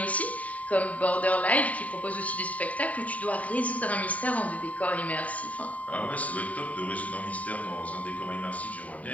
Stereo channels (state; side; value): late; right; 0.069 ms